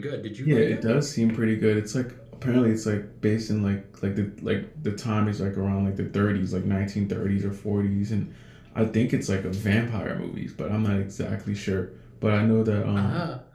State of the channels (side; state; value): both; identical; correlation 1.00